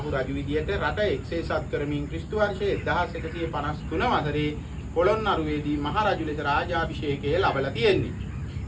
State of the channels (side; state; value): both; identical; correlation 1.00